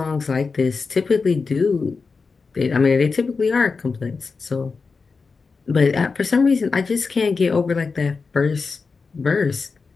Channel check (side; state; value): right; quieter; 4.6 dB